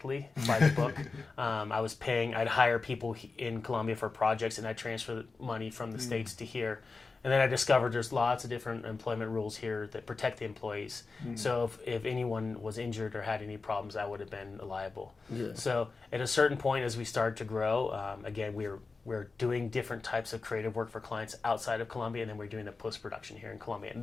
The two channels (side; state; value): right; quieter; 4.1 dB